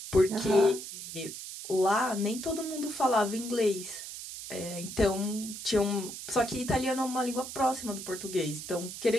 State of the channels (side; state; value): right; noise; hiss, 10 dB below the sound